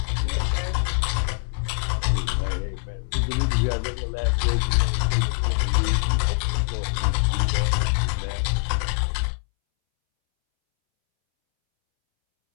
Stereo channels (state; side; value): silent; right; 63 dB below the other